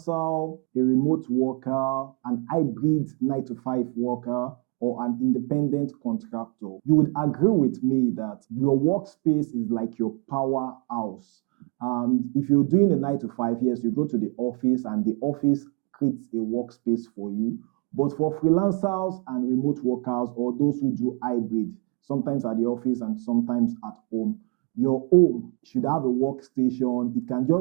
a remote worker, an hybrid 9-to-5 worker, or an independent contractor, you would agree with me that your workspace is like your powerhouse. And if you're doing a 9-to-5, yes, you go to the office and the office creates a workspace for you. But for freelancers and remote workers or those who do hybrid, sometimes at the office and sometimes at home, your home should have a workstation. It can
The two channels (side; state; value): left; quieter; 31.4 dB